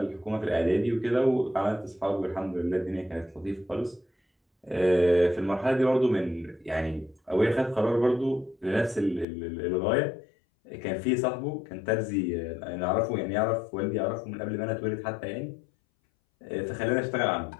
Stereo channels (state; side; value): drops out; right; at 9.2 s